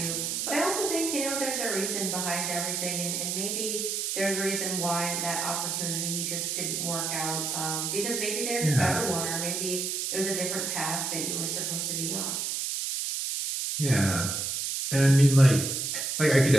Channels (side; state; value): right; noise; hiss, 1 dB below the sound